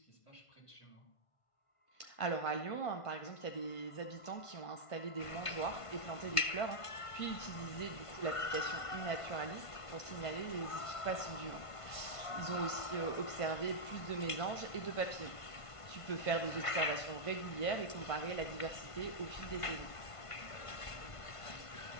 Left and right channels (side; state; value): right; late; 1.5 ms